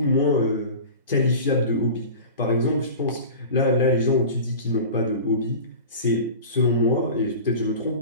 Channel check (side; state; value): both; inverted; correlation -0.35